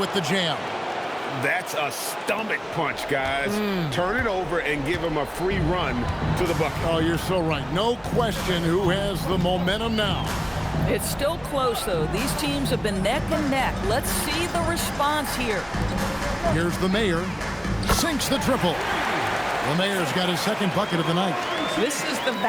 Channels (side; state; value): both; identical; correlation 1.00